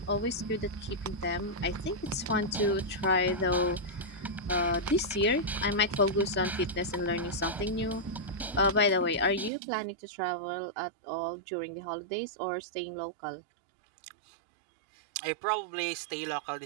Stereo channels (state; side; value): drops out; left; at 9.5 s